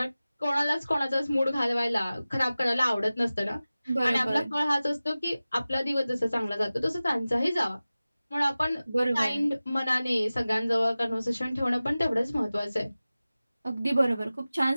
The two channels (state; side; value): inverted; both; correlation -0.97